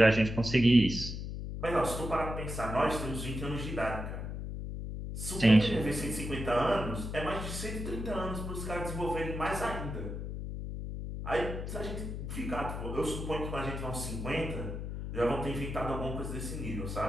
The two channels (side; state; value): left; noise; hum, 5 dB below the sound